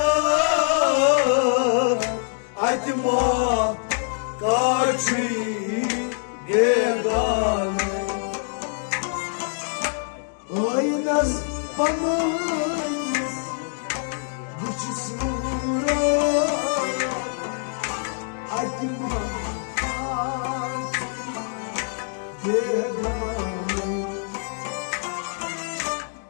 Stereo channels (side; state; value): right; silent; 62 dB below the other